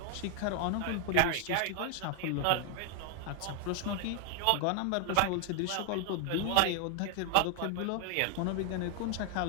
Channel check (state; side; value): different; both; correlation 0.00